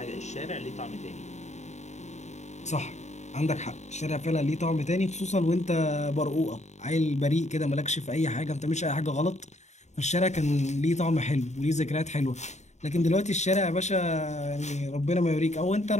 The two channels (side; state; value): right; late; 0.33 ms